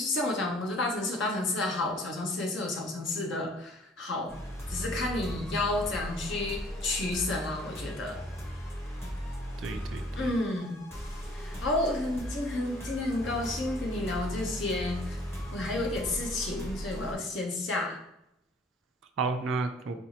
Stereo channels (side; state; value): both; normal; correlation 0.55